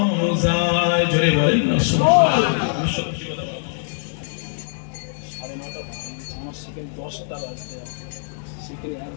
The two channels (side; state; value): right; silent; 64 dB below the other